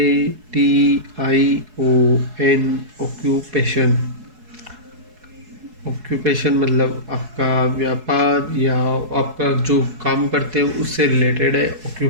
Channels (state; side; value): late; left; 4.7 ms